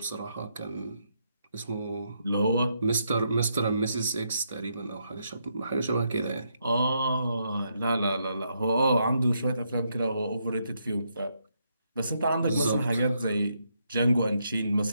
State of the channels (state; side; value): inverted; both; correlation -0.78